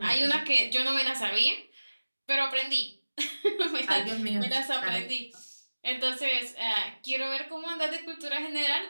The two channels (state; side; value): inverted; both; correlation -1.00